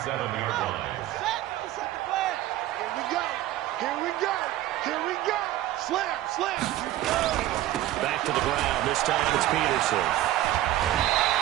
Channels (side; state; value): left; quieter; 14.3 dB